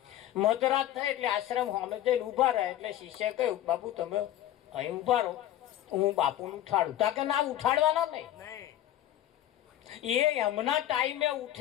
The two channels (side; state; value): right; quieter; 12.8 dB